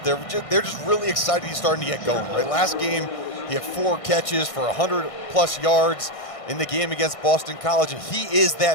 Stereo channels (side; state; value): right; late; 1.6 ms